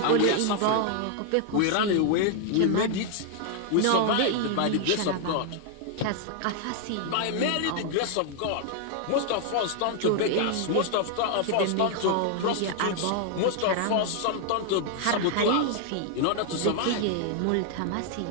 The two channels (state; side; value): different; both; correlation 0.00